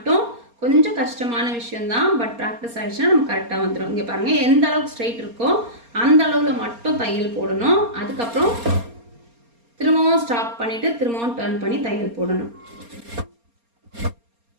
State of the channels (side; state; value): left; late; 4.3 ms